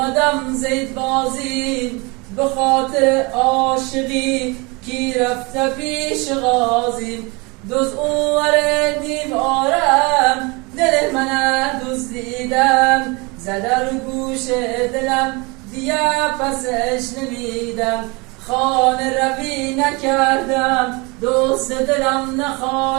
زید بازی، به خاطر عاشقی کی رفته پیش غازی، دوز اوور دیوارم دل من دزدیدم، زده رو گوش دلم دیگه پسش نمیدم، خانه روی نکردم دوست دلم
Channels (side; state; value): left; quieter; 27.5 dB